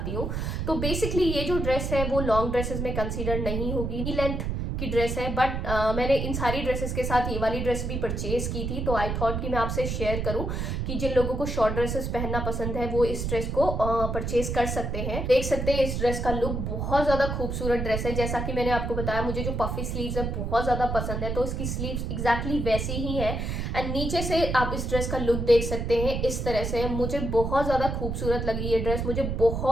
हूँ। तो बेसिकली ये जो ड्रेस है वो लॉन्ग ड्रेसेस में कंसिडर नहीं होगी। नी लेंथ की ड्रेस है, बट मैंने इन सारी ड्रेसेस के साथ ये वाली ड्रेस भी परचेज की थी, तो आई थॉट कि मैं आपसे शेयर करूं कि जिन लोगों को शॉर्ट ड्रेसेस पहनना पसंद है वो इस ड्रेस को परचेज कर सकते हैं। देख सकते हैं इस ड्रेस का लुक बहुत ज्यादा खूबसूरत ड्रेस है। जैसा कि मैंने आपको बताया, मुझे जो पफी स्लीव्स है बहुत ज्यादा पसंद है, तो इसकी स्लीव्स एग्जैक्टली वैसी ही है। एंड नीचे से आप इस ड्रेस का लुक देख सकते हैं इस तरह से। मुझे बहुत ज्यादा खूबसूरत लगी ये ड्रेस, मुझे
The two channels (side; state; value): right; noise; rumble, 2 dB below the sound